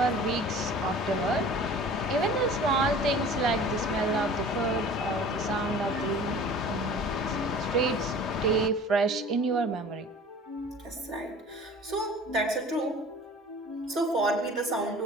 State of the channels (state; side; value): normal; both; correlation 0.44